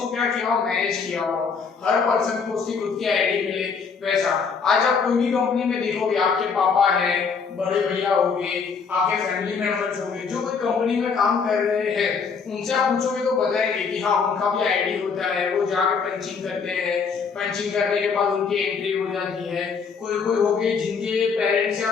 क्या किया हो, मैनेज किया हो, हर पर्सन को उसकी खुद की आईडी मिले, वैसा। आज आप कोई भी कंपनी में देखोगे, आपके पापा है, बड़े भैया होंगे, आपके फैमिली मेंबर्स होंगे, जो कोई कंपनी में काम कर रहे हैं, उनसे आप पूछोगे तो बताएंगे कि हाँ उनका भी आईडी होता है, वो जाके पंचिंग करते हैं, पंचिंग करने के बाद उनकी एंट्री हो जाती है। कोई कोई हो गए जिनके पेरेंट्स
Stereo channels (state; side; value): quieter; right; 5.6 dB